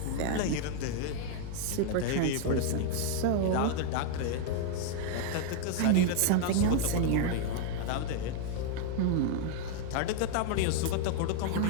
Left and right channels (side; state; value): both; different; correlation 0.00